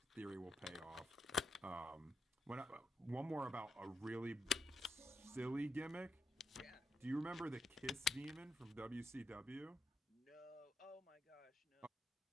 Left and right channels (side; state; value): both; normal; correlation 0.83